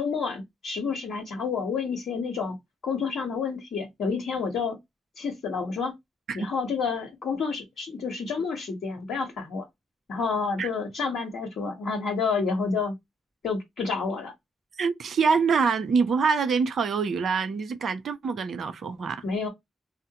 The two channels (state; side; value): normal; both; correlation 0.66